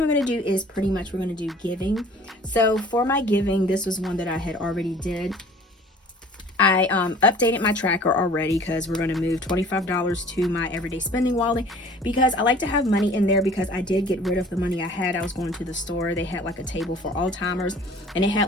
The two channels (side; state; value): both; normal; correlation 0.49